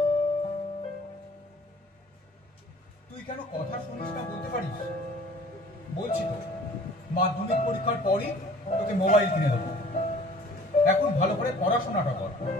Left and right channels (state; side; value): normal; both; correlation 0.50